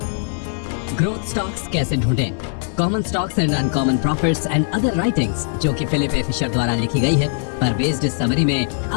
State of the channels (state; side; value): silent; right; digital silence